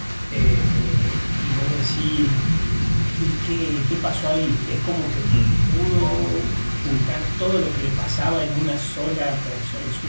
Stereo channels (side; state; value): both; inverted; correlation -1.00